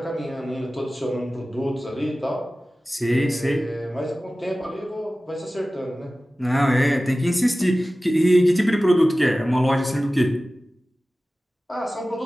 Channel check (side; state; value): both; normal; correlation 0.96